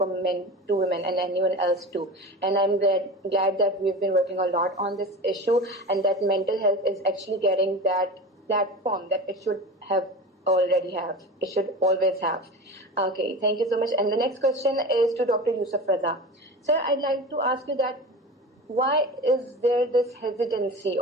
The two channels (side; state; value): both; normal; correlation 0.31